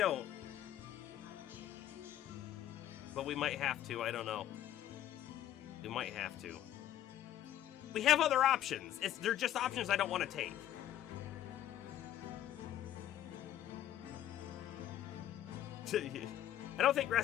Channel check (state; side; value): quieter; right; 12.0 dB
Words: But we might have to. I don't know. We might have to. We have other options. They're just options I don't want to take. I don't think